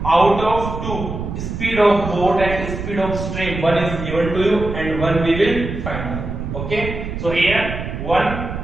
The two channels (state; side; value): noise; right; rumble, 6 dB below the sound